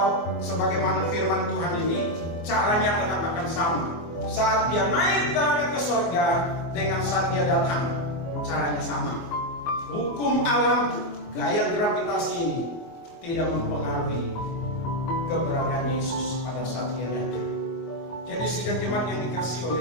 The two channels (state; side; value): late; right; 24 ms